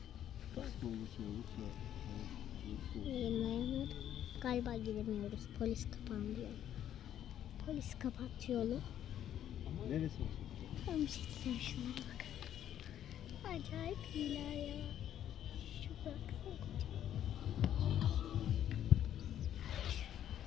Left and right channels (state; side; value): quieter; right; 10.8 dB